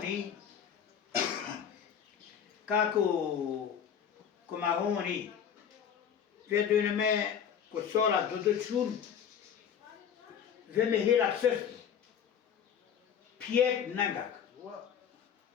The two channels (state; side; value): quieter; right; 8.1 dB